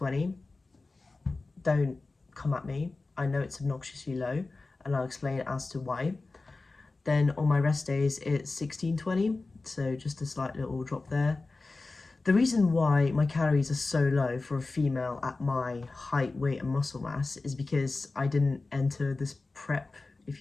Don't come at me. I know it's obnoxiously low, and I'll explain as to why. Then on my rest days, it's 1620, so just a slight little drop there. The reason why my calories are so low for a female at my height, weight and muscle mass is because I didn't enter this prep, if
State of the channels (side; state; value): right; quieter; 3.5 dB